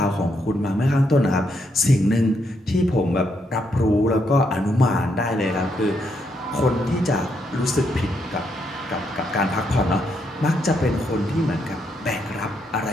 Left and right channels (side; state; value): both; normal; correlation 0.77